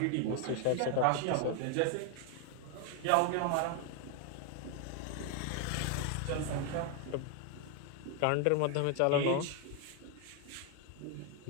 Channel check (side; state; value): both; different; correlation 0.01